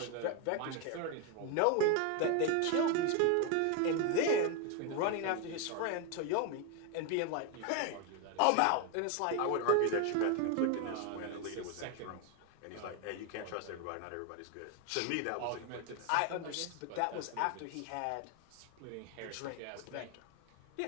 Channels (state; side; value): different; both; correlation 0.01